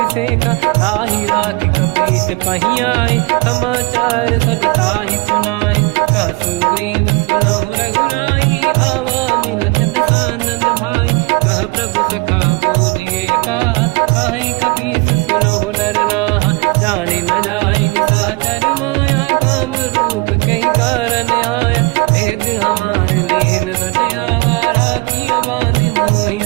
ताहि राखी कपीस पही आए समाचार सब ताहि सुनाए। कह सुग्रीव सुनहु रघुराई आवा मिलन दसानन भाई। कह प्रभु सखा पूजिए का कहीं कपीस सुनहु नर नाहा। जाने न जाएगी साचर माया काम रूप कई कारण आया। भेद हमार लेन सटयावा राखी बांधि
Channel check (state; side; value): quieter; left; 25.9 dB